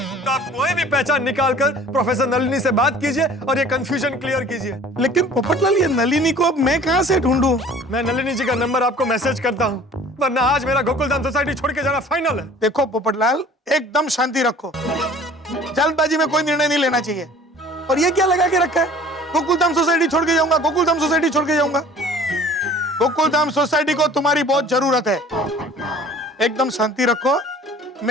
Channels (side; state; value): both; normal; correlation 0.48